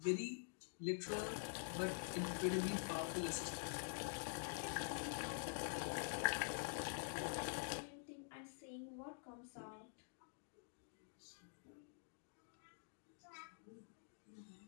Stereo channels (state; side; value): silent; right; digital silence